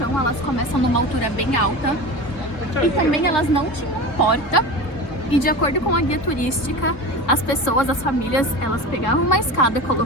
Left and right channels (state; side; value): late; right; 3.7 ms